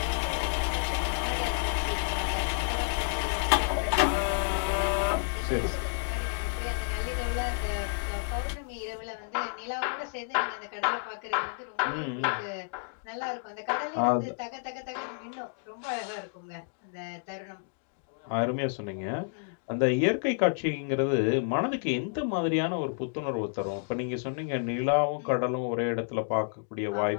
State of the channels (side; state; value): right; silent; digital silence